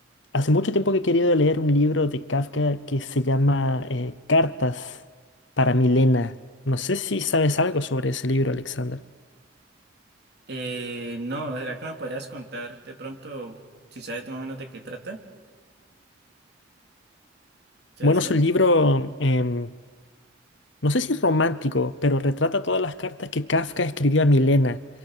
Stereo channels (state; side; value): normal; both; correlation 0.25